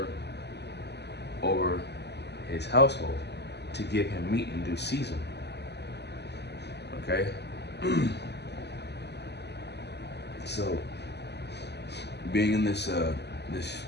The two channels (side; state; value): right; late; 0.49 ms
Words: over his household, to give him meat in due season?" Okay? So, being in this